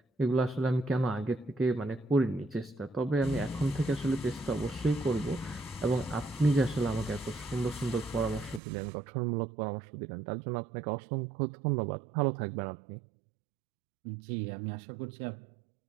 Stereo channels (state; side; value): drops out; left; at 8.6 s